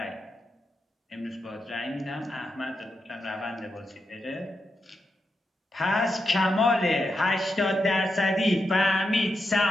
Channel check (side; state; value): both; normal; correlation 0.86